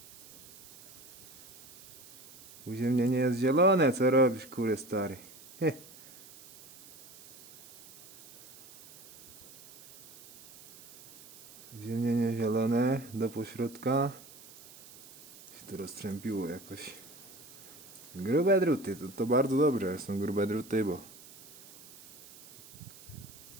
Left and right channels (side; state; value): right; noise; hiss, 20 dB below the sound